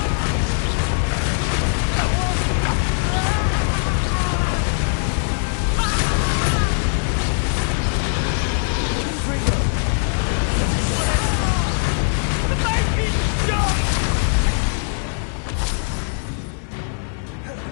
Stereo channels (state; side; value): silent; right; 65 dB below the other